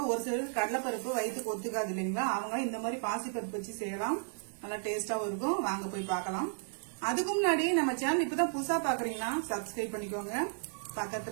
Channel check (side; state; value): left; silent; digital silence